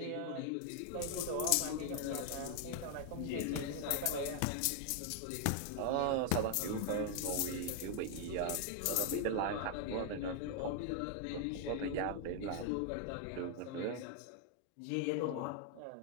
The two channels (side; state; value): both; different; correlation 0.00